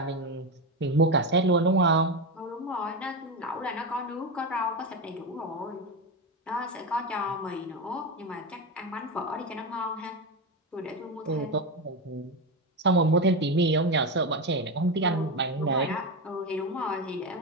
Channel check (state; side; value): normal; both; correlation 0.15